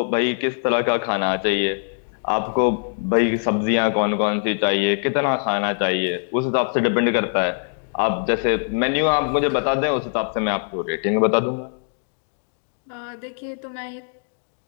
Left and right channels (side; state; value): right; silent; digital silence